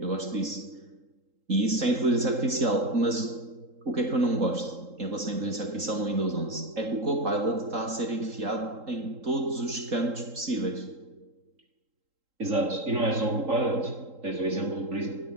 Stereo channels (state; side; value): late; left; 3.8 ms